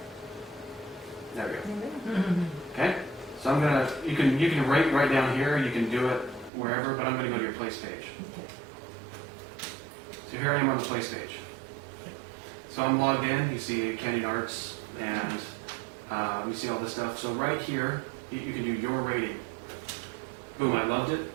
There we go. Okay, so I'm gonna, you can rate right down here, you can do it wherever, but I'm gonna go to your place page. Okay. So here I am on the place page. So I'm logged in, you see Canyon Arts, and you see all this stuff. So right here, you can do your rating. Boom, I loved it.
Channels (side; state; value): left; drops out; at 6.5 s